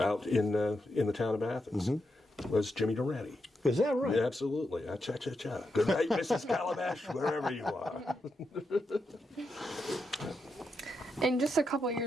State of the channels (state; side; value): normal; both; correlation 0.85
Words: in the town of Athens, was Jimmy Durante. Is that right? Yeah, absolutely. Cha-cha-cha. Good night, Mrs. Calabash, wherever you are. In just a couple of